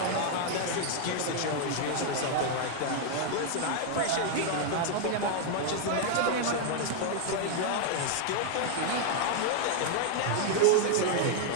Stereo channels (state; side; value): different; both; correlation 0.00